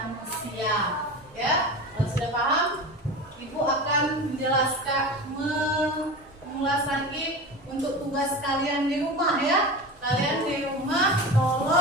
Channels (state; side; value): normal; both; correlation 0.30